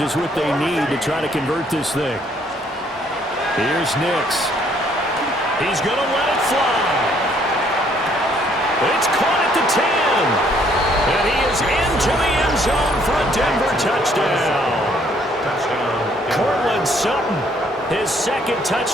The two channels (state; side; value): normal; both; correlation 0.65